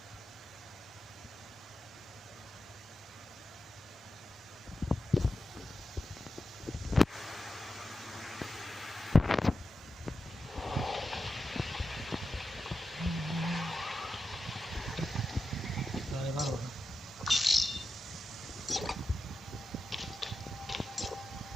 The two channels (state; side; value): normal; both; correlation 0.91